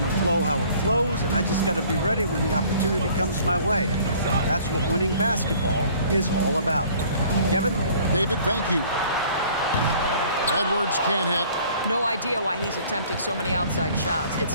to flow how it flows, and I just got to be ready when the opportunity comes my way. That's what winning basketball is all about. Kevin? David, thank you. Edwards can't hit. No idea why he's attempting so many outside shots.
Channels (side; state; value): both; inverted; correlation -0.53